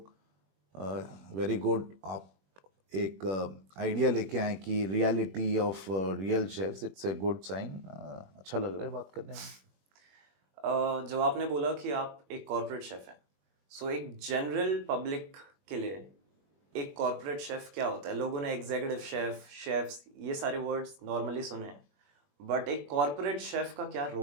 वेरी गुड, आप एक आइडिया लेके आए कि reality of real chefs, it's a good sign. अच्छा लग रहा है बात करने में। जब आपने बोला कि आप एक कॉर्पोरेट शेफ हैं, सो एक जनरल पब्लिक के लिए एक कॉर्पोरेट शेफ क्या होता है? लोगों ने एग्जीक्यूटिव शेफ, शेफ्स, ये सारे वर्ड्स नॉर्मली सुने हैं, बट एक कॉर्पोरेट शेफ का क्या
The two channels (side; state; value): left; late; 21 ms